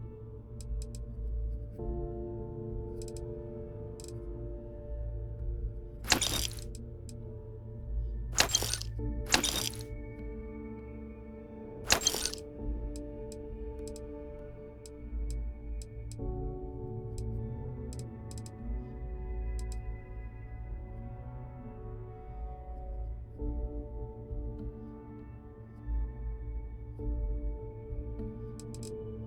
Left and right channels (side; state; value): both; identical; correlation 1.00